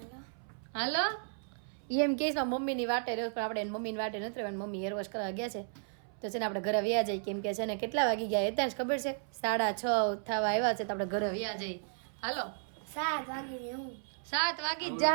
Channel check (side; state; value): left; silent; 55 dB below the other